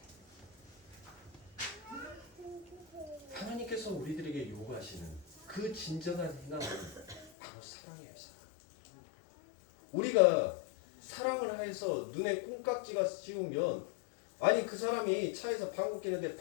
하나님께서 우리들에게 요구하시는 그 진정한 희망은 바로 사랑이에요. 사랑. 우리가 사랑을 해서 눈에 콩깍지가 씌우면 아니 그 사람이 차에서 방구 끼는데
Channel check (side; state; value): right; drops out; at 7.3 s